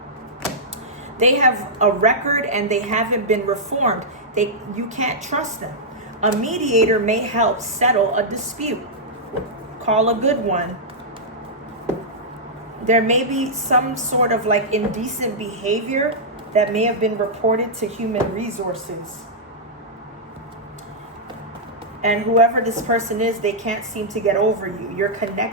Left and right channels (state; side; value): normal; both; correlation -0.09